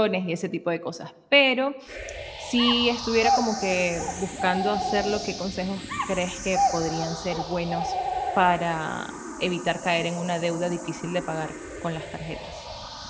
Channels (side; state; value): both; identical; correlation 1.00